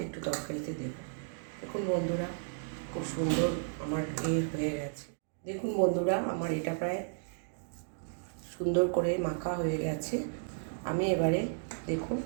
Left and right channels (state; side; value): silent; left; digital silence